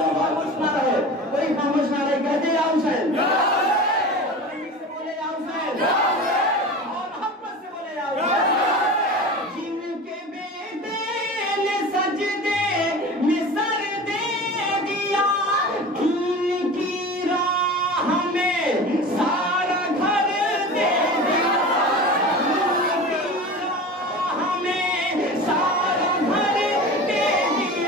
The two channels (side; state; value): both; normal; correlation 0.33